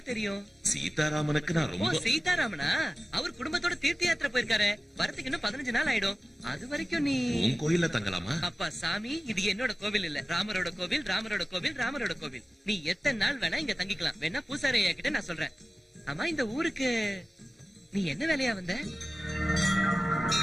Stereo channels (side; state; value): both; normal; correlation 0.97